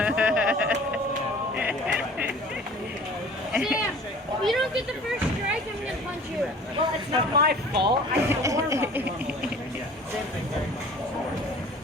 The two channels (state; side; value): normal; both; correlation 0.46